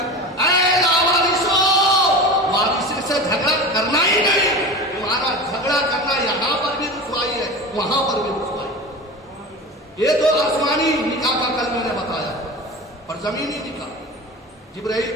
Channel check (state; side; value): normal; both; correlation 0.31